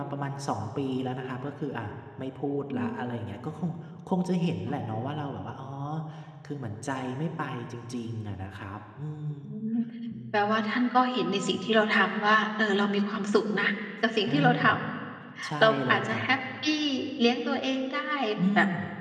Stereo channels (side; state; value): both; identical; correlation 1.00